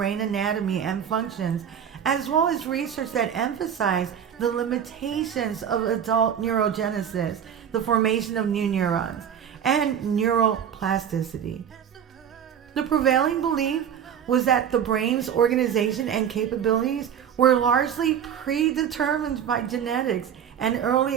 anatomy and functions, as well as research that emphasized the limitations of adult neurogenesis, the formation of new neurons, and neuroplasticity. The prevailing belief was that the brain's organization and capabilities were largely predetermined by genetics and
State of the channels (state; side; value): quieter; left; 8.6 dB